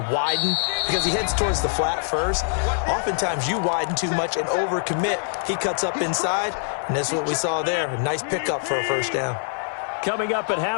widen because he heads towards the flat first, oftentimes you widen too much and overcommit. He cuts up inside, and that's what we saw there. A nice pickup for a first down. Coming up at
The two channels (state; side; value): silent; right; digital silence